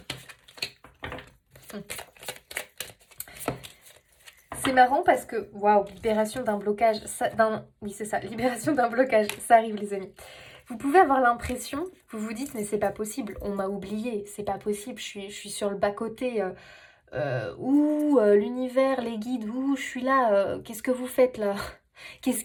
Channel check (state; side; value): identical; both; correlation 1.00